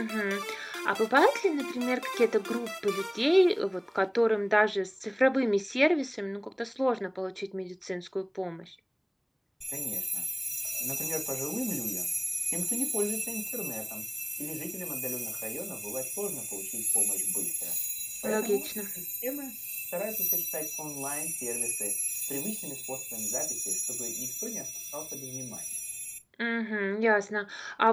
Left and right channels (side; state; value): both; identical; correlation 1.00